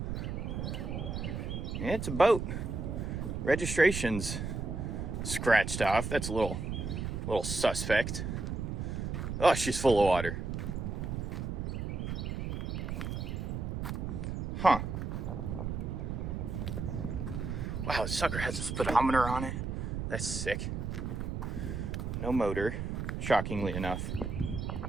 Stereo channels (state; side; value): noise; right; rumble, 3 dB below the sound